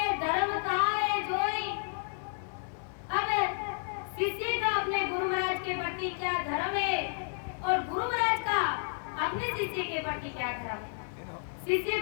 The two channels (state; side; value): silent; right; digital silence